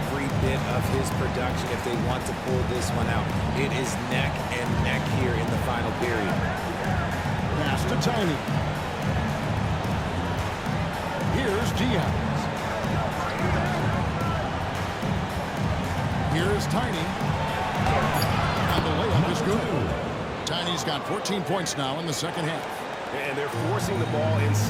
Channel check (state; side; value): identical; both; correlation 1.00